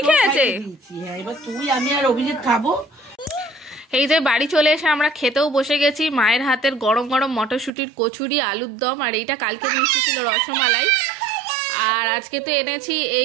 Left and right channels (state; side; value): drops out; left; at 7.7 s